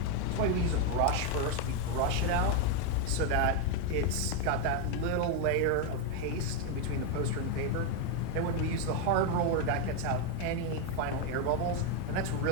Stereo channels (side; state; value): both; different; correlation 0.02